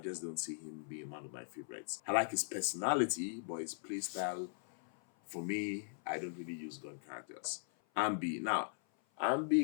just don't see him being one of my favorites. I like his personality, but his playstyle, for me, I don't really use gun characters. Ambi. Now,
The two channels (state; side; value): silent; right; 52 dB below the other